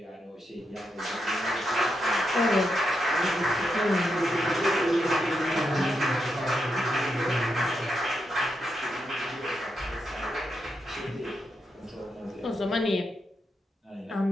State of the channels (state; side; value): normal; both; correlation 0.83